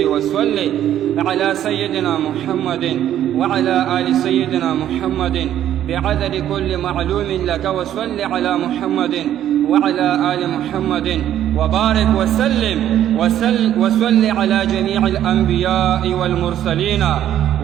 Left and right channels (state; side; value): quieter; left; 11.3 dB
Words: وصل على سيدنا محمد وعلى آل سيدنا محمد بعدد كل معلوم لك وصل على محمد وعلى آل محمد وبارك وسلم وصل على جميع الأنبياء والمرسلين